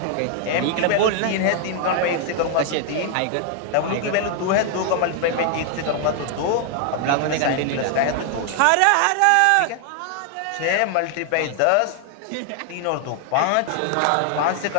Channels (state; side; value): different; both; correlation 0.00